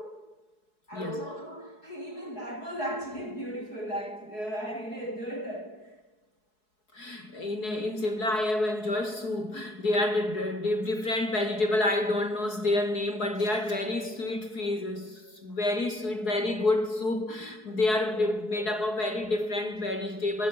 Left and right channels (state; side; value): late; right; 4.7 ms